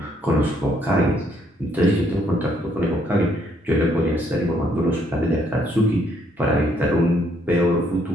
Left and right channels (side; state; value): both; normal; correlation 0.69